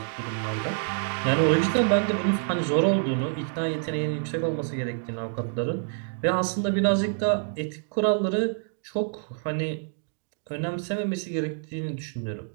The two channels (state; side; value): silent; left; 60 dB below the other